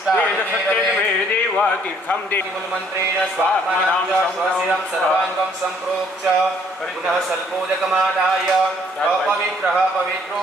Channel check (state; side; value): normal; both; correlation 0.64